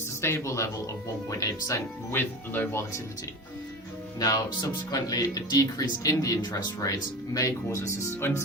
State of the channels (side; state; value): both; normal; correlation 0.31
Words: level of 1.8% with low volatility. Now, subsequently, a decrease in the interest rates may cause